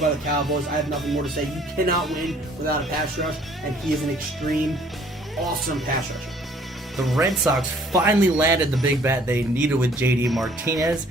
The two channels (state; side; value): normal; both; correlation 0.58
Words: the Cowboys. I have nothing more to say. You cannot win without a pass rush, and he is an extreme, awesome pass rusher. The Red Sox finally landed the big bat they needed with JD Martinez.